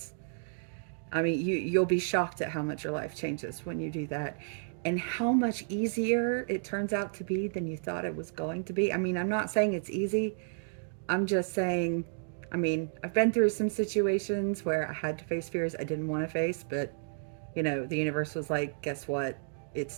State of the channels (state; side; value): silent; left; digital silence